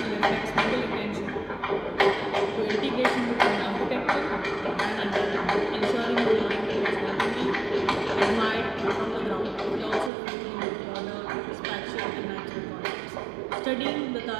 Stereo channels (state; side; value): drops out; left; at 10.1 s